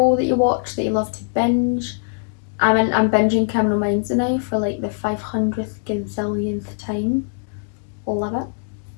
that you watch that you love to binge. I'm binging Criminal Minds now for like the 500th gazillionth time. Love it.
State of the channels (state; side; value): silent; right; digital silence